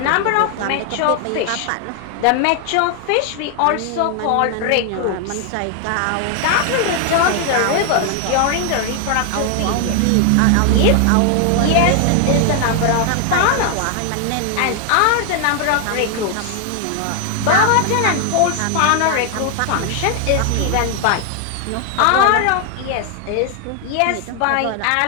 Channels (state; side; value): different; both; correlation 0.00